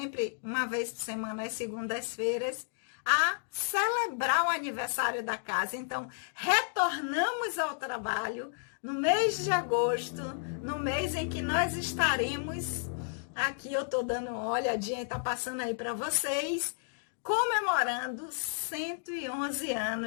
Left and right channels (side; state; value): right; silent; digital silence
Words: uma vez por semana, às segundas-feiras, a celebrar o aniversário da casa. Então, retornamos ao trabalho no mês de agosto, no mês em que nós estaremos, aqui eu estou dando uma olhadinha e está passando aí para vocês, comemorando 111